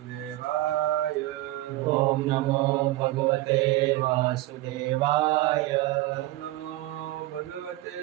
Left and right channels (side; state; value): left; quieter; 17.3 dB